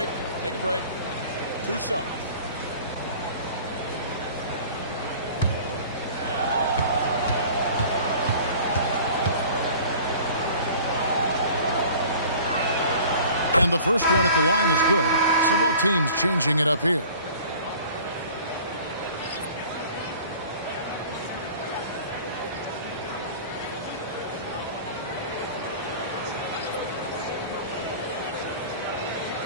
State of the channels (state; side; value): inverted; both; correlation -0.44